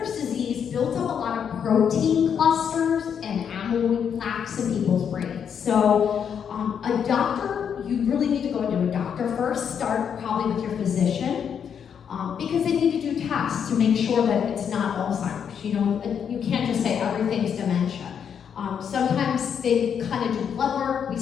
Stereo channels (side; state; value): right; quieter; 7.7 dB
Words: disease builds up a lot of protein clusters and amyloid plaques in people's brains. So a doctor, you really need to go into a doctor first. Start probably with your physician, because they need to do tests to make sure that it's not Alzheimer's. You can't just say everything's dementia. Sometimes they kind of do blood work. We